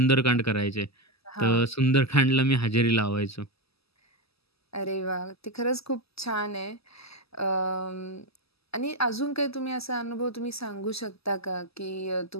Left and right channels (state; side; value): late; right; 0.78 ms